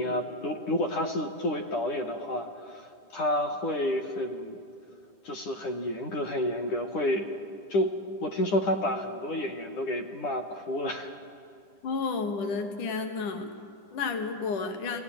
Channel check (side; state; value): right; late; 10 ms